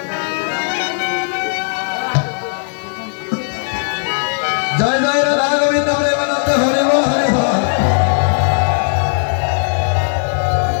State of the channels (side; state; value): right; silent; 60 dB below the other